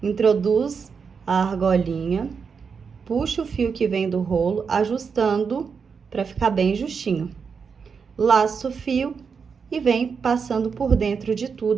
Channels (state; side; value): quieter; left; 5.9 dB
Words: introduz a argolinha, puxa o fio que vem do rolo, ajustando para ficar bem justinho. Laça o fio e vem passando por dentro de